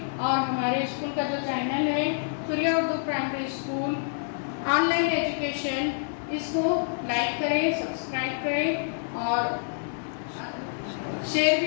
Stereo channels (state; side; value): silent; right; digital silence